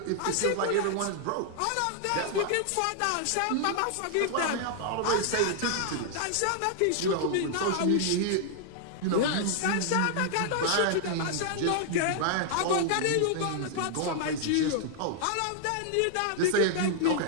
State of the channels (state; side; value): different; both; correlation 0.00